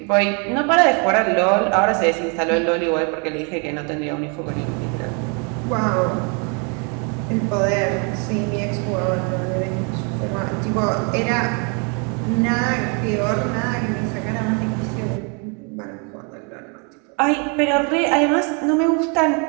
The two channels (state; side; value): quieter; left; 36.0 dB